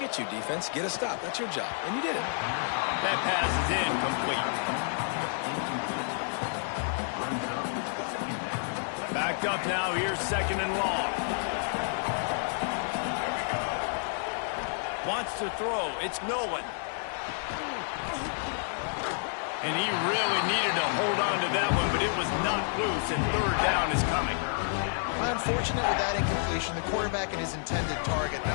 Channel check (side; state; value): right; silent; digital silence